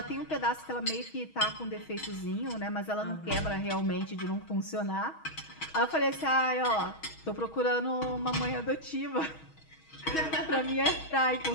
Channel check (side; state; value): right; late; 6.3 ms